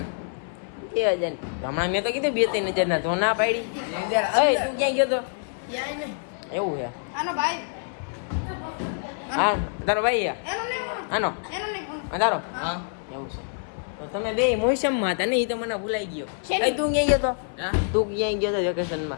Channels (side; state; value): right; silent; 61 dB below the other